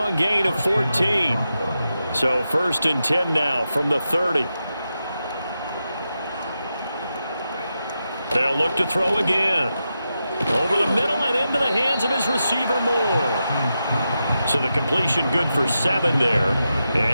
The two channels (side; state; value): both; inverted; correlation -0.88